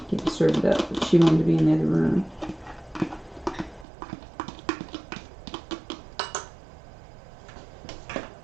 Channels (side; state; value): left; drops out; at 3.9 s